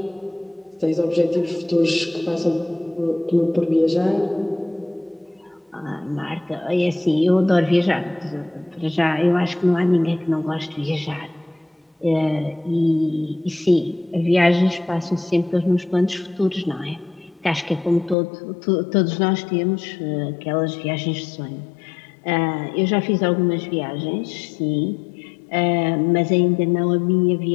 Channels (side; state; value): right; drops out; at 18.2 s